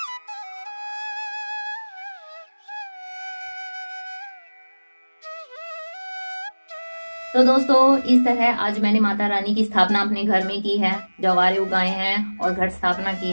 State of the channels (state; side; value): inverted; both; correlation -1.00